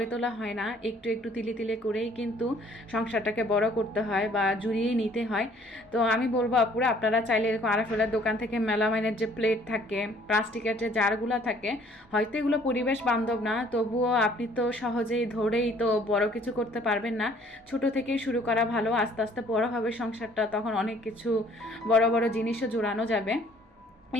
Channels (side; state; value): both; normal; correlation 0.58